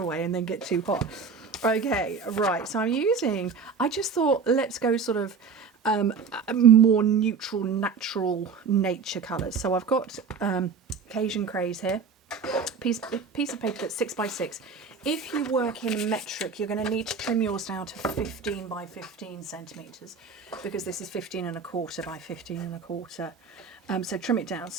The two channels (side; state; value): left; quieter; 5.5 dB